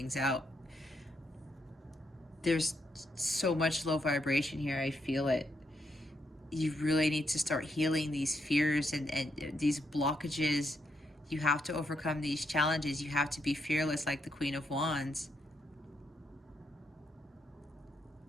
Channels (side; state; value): both; normal; correlation 0.78